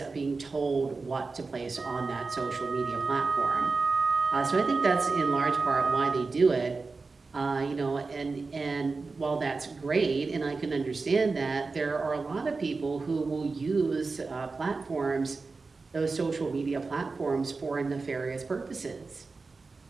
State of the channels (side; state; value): left; quieter; 4.1 dB